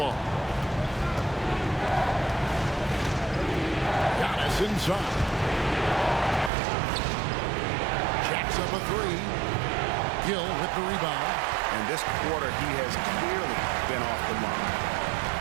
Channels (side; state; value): left; drops out; at 6.5 s